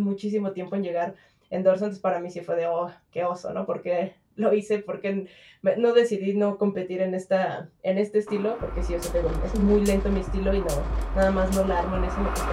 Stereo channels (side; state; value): both; identical; correlation 1.00